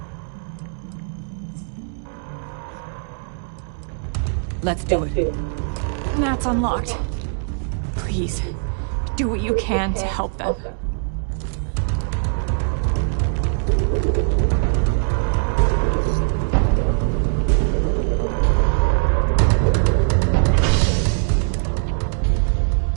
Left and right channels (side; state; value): left; silent; 65 dB below the other